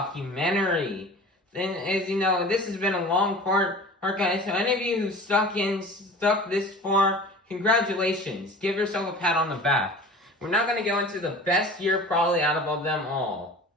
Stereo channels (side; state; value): both; normal; correlation 0.40